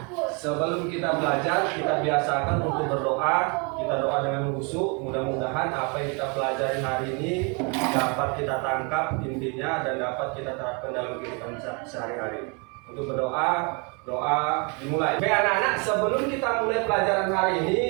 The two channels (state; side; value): quieter; left; 33.1 dB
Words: sebelum kita belajar, kita biasakan untuk berdoa. Kita doa dengan khusyuk. Mudah-mudahan apa yang kita pelajari hari ini dapat kita tangkap intinya dan dapat kita terapkan dalam kehidupan sehari-hari. Untuk berdoa, doa dimulai. Baik anak-anak, sebelum kita mulai pelajaran hari